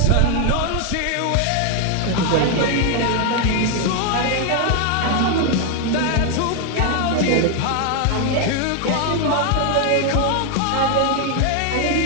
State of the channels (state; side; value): different; both; correlation 0.01